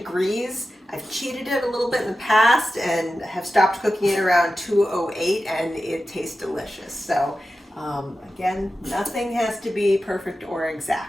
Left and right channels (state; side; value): normal; both; correlation 0.93